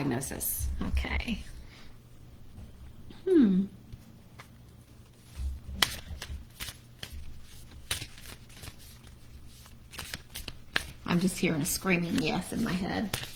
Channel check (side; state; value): both; identical; correlation 1.00